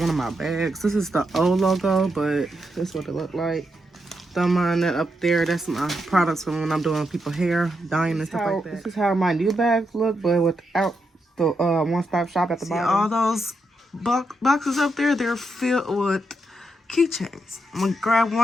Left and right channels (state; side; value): normal; both; correlation 0.83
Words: of my bags. This is the old logo, but this is what it looked like. Don't mind that up there. That's my products from when I'm doing people's hair, dyeing and stuff like that. This is how my new bags look, but without the one-stop shop at the bottom. All those boxes up there, they're filled with keychains. I'm gonna grab